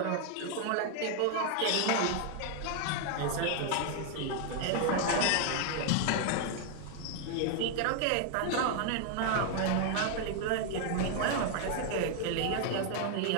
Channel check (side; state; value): both; different; correlation 0.00